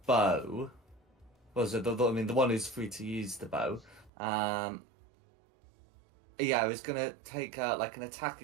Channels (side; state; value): left; drops out; at 4.1 s